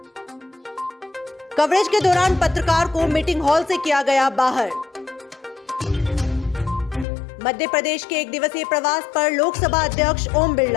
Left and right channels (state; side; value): drops out; right; at 7.1 s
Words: कवरेज के दौरान पत्रकार को मीटिंग हॉल से किया गया बाहर। मध्य प्रदेश के एक दिवसीय प्रवास पर लोकसभा अध्यक्ष ओम